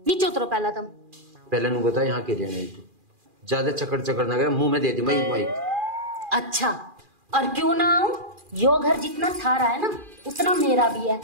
नीचे उतरो। पहला तम पहले नु बता यहाँ के लिए नहीं, तू ज्यादा चकड़ ना करे, मुंह में दे दी माइक। अच्छा, और क्यों ना आऊं? यो घर जितना थारा है ना उतना मेरा भी है,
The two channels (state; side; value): late; left; 2.4 ms